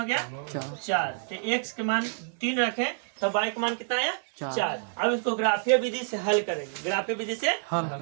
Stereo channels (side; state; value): left; silent; digital silence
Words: गया 4। तो x के मान 3 रखें तो y का मान कितना आया 4। अब इसको ग्राफीय विधि से हल करेंगे, ग्राफीय विधि से